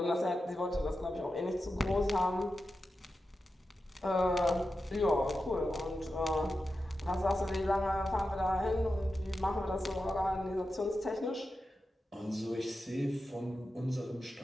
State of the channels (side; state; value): both; normal; correlation 0.91